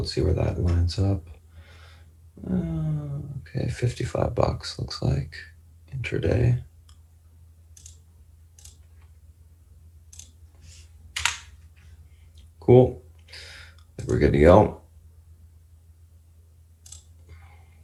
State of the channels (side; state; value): both; identical; correlation 1.00